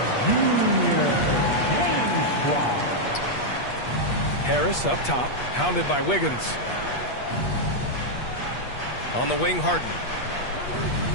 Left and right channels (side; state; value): right; late; 8.4 ms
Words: Harris up top, hounded by Wiggins. On the wing, Harden.